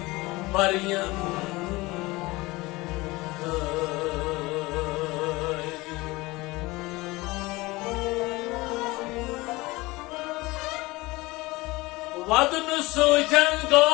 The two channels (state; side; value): quieter; right; 21.6 dB